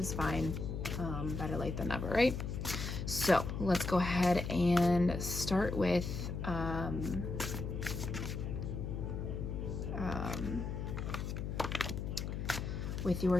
fine. Better late than never, right? So let's go ahead and start with your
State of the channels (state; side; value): noise; left; hum, 4 dB below the sound